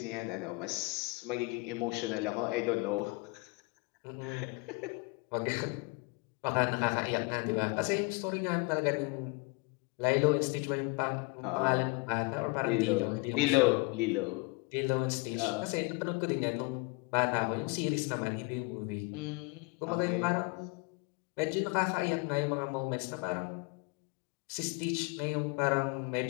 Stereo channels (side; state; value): right; quieter; 27.3 dB